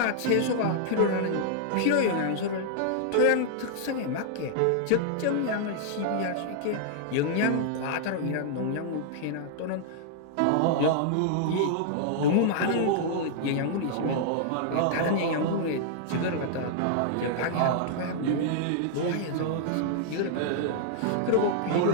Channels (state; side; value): different; both; correlation -0.01